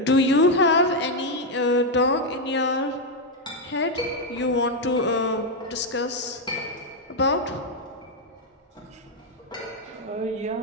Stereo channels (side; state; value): both; normal; correlation 0.03